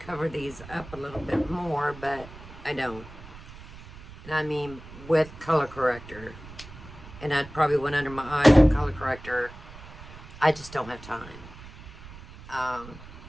these up a little bit more, but I don't. And I mean, with color corrector. And I'd probably went under my eyes with color corrector. I just don't have time.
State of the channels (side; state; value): right; noise; rumble, 17 dB below the sound